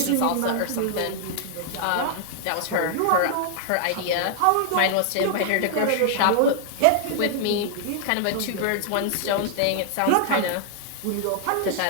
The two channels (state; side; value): different; both; correlation -0.01